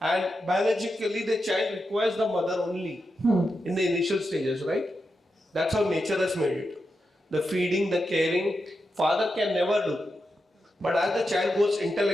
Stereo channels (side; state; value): both; normal; correlation 0.87